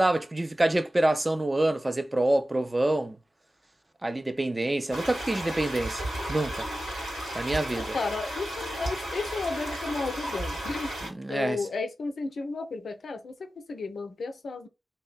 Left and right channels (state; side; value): normal; both; correlation 0.94